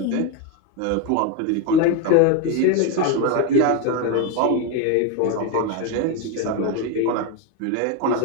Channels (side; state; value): both; different; correlation 0.02